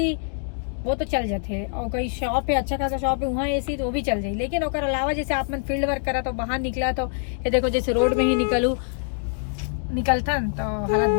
वो तो चल जाते हैं। और कोई शॉप है, अच्छा खासा शॉप है, वहाँ एसी तो वो भी चल जाए। लेकिन ओकर अलावा जैसे आप मन फील्ड वर्क करा तो बाहर निकला तो ये देखो, जैसे रोड में ही निकलता तो हालत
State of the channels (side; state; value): right; silent; 62 dB below the other